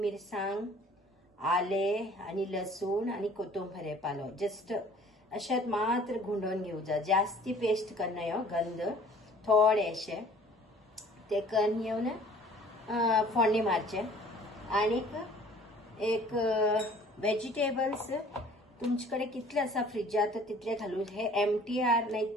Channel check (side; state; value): both; normal; correlation 0.52